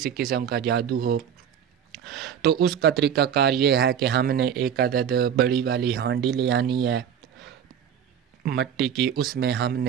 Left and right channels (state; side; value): quieter; left; 8.6 dB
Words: قسم کا جادو ہو، تو اس کا طریقہ کار یہ ہے کہ ہم نے 1 عدد بڑی والی ہانڈی لے آنی ہے مٹی کی۔ اس میں ہم